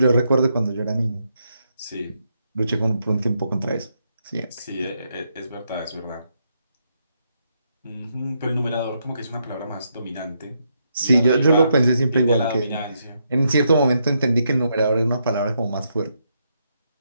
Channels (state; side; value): inverted; both; correlation -0.79